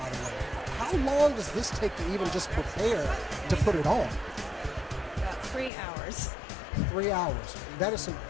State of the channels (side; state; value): right; drops out; at 5.7 s